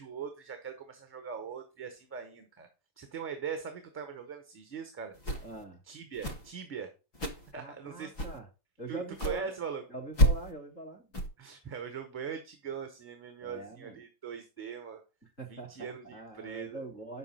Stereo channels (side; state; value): right; late; 5.9 ms